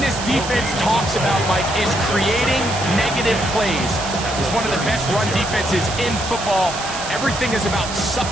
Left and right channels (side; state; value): right; noise; hiss, 8 dB below the sound